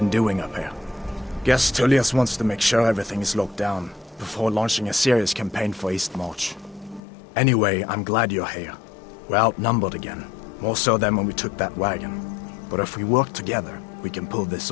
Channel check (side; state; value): right; drops out; at 7.0 s